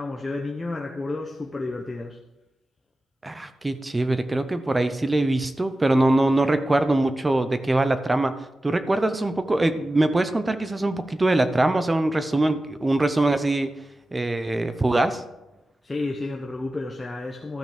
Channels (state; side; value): normal; both; correlation 0.94